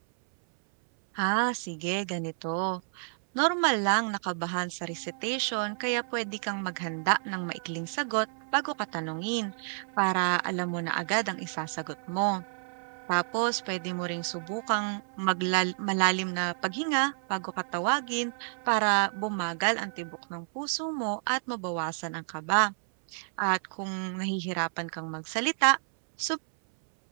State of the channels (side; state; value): left; silent; 58 dB below the other